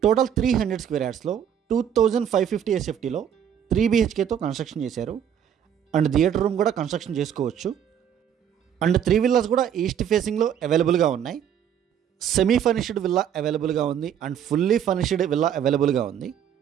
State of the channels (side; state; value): left; quieter; 9.1 dB